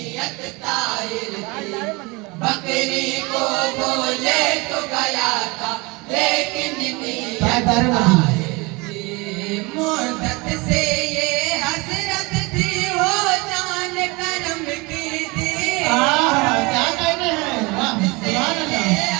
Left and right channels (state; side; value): quieter; left; 25.5 dB